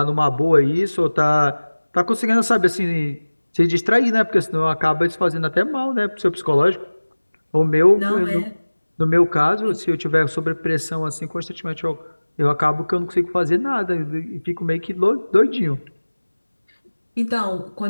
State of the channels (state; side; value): inverted; both; correlation -1.00